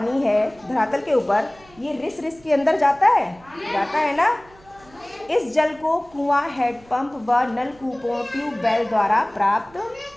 है धरातल के ऊपर, ये रिस रिस के अंदर जाता है ना। इस जल को कुआं, हैंडपंप व नलकूपों, ट्यूबवेल द्वारा प्राप्त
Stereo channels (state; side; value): noise; right; hum, 27 dB below the sound